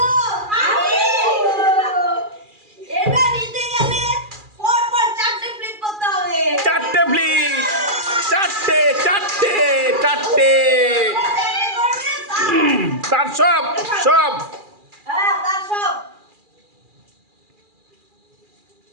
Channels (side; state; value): left; late; 2.4 ms